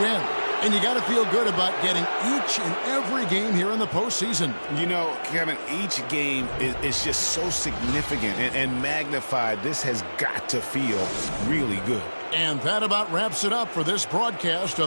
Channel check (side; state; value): both; inverted; correlation -1.00